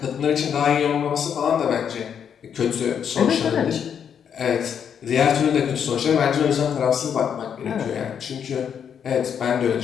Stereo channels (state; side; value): quieter; right; 7.9 dB